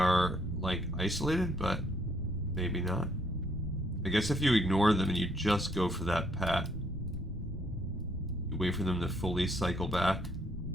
like isolated, but maybe not. I guess if you ignore them and you just go for that pat, you wait for them to fully cycle back.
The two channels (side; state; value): both; normal; correlation 0.69